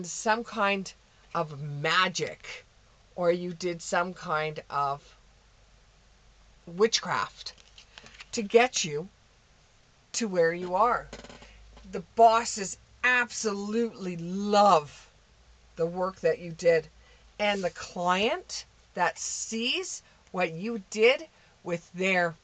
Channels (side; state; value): both; identical; correlation 1.00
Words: some kind of magic or you did some kind of witchcraft to get you to where you are. The bosses absolutely love the work that you did. And the client that sees what you did with their